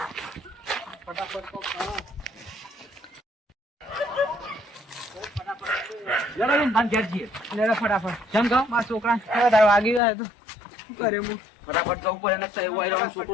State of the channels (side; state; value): right; drops out; at 10.0 s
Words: લેડો બેન, બાન ઘેર જઈએ. લેડો ફટાફટ. કેમ કહો? મારા છોકરા વધારે વાગી ગયા તો શું કરે હું ફટાફટ જવું પડે ને એવું આવી રહ્યો